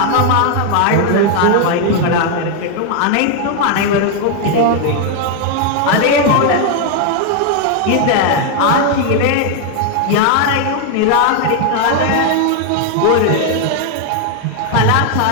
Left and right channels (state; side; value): different; both; correlation 0.00